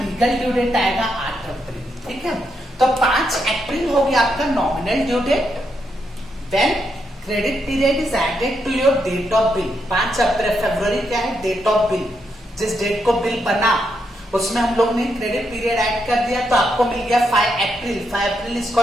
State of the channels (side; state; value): both; normal; correlation 0.80